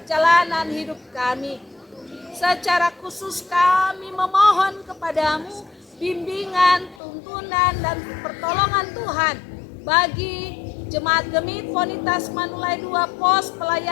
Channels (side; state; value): right; drops out; at 7.0 s